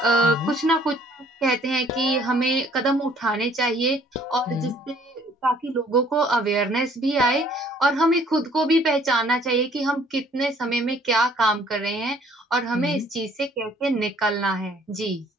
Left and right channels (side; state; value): both; normal; correlation 0.59